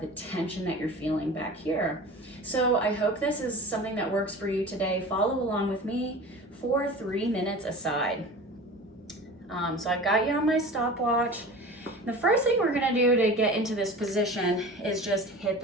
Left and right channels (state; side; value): normal; both; correlation 0.36